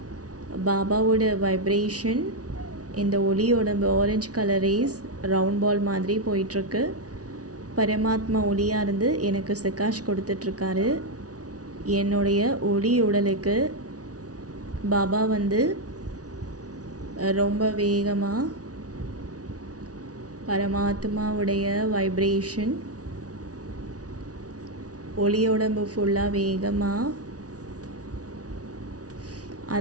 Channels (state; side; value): late; left; 0.68 ms